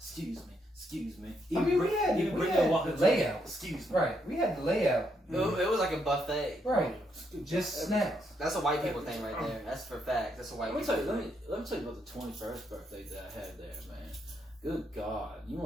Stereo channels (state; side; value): normal; both; correlation 0.77